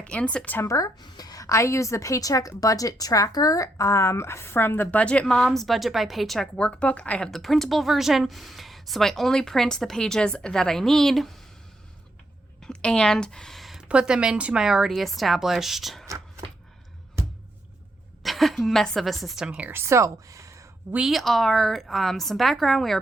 in September. I use the Paycheck budget tracker from the Budget Moms Budget by Paycheck workbook. I have the printable version, so I only print the pages that I need and put them into my already established mess of a system here. So we are, some background, we are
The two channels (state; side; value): normal; both; correlation 0.78